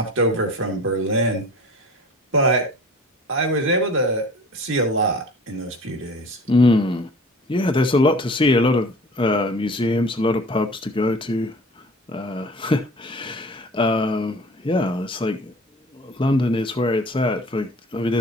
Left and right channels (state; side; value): normal; both; correlation 0.43